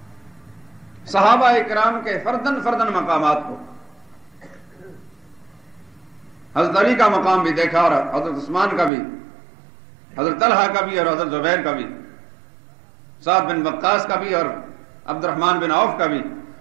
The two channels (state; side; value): drops out; left; at 8.9 s